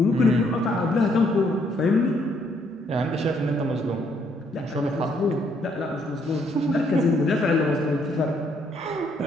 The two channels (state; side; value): normal; both; correlation 0.70